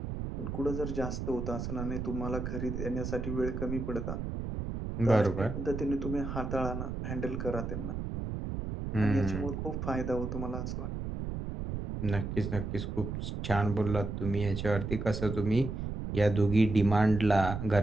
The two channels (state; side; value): noise; right; rumble, 4 dB below the sound